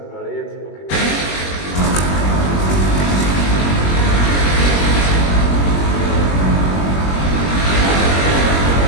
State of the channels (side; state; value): right; late; 21 ms